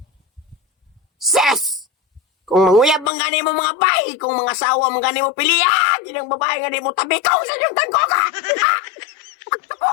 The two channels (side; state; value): right; drops out; at 3.1 s